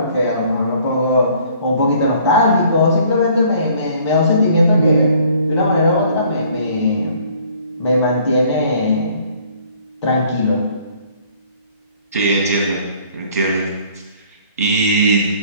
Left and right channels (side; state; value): both; inverted; correlation -0.58